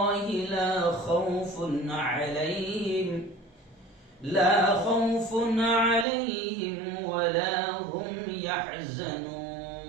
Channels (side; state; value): left; drops out; at 6.1 s